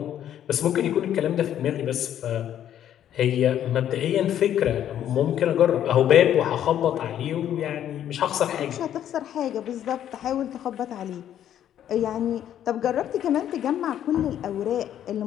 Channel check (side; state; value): right; quieter; 10.7 dB